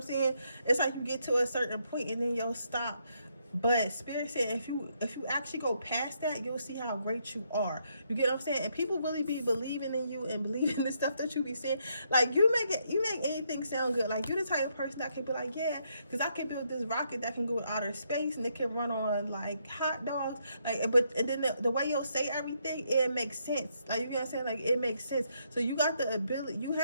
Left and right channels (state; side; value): inverted; both; correlation -0.76